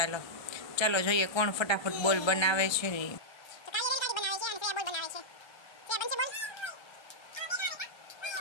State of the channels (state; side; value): late; right; 1.3 ms